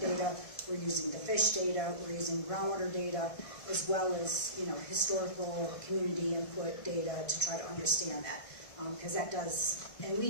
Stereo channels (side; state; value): right; late; 1.5 ms